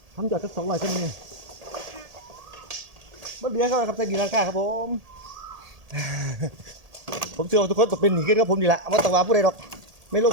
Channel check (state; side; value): late; left; 1.8 ms